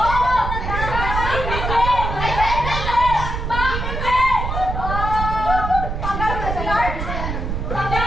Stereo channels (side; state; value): right; noise; rumble, 3 dB below the sound